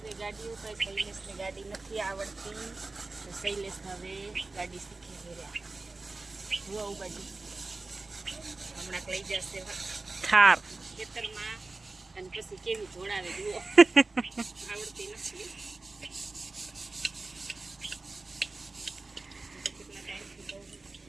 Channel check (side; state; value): left; quieter; 3.4 dB